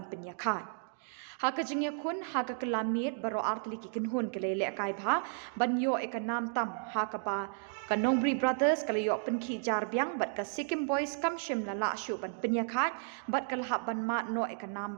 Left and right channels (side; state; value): left; silent; digital silence